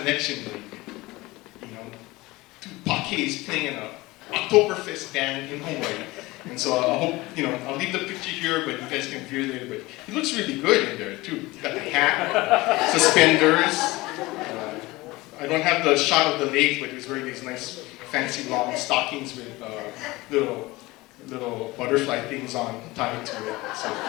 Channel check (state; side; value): quieter; right; 20.8 dB